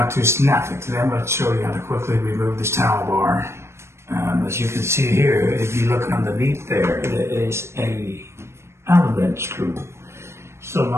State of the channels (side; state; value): left; late; 0.13 ms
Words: to Snapfix. Today I'm going to show you how to quickly remove this towel bar. As you can see here, if you look underneath there, there is a Allen wrench screw. So